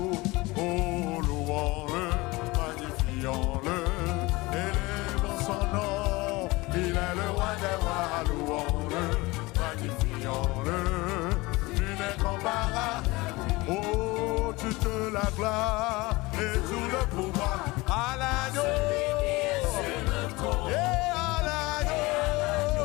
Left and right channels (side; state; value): right; quieter; 22.3 dB